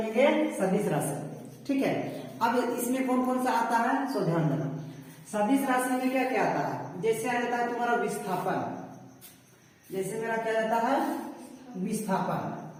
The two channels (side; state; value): both; identical; correlation 1.00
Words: सदिश राशि, ठीक है। अब इसमें कौन कौन सा आता है सो ध्यान देना। सदिश राशि में क्या क्या आता है, जैसे आ जाता है तुम्हारा विस्थापन, जैसे मेरा क्या जाता है, विस्थापन,